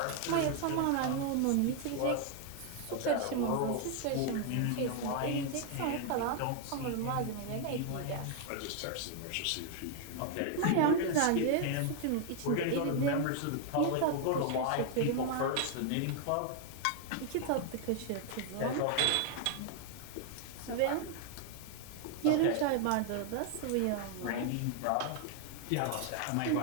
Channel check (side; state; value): both; different; correlation 0.00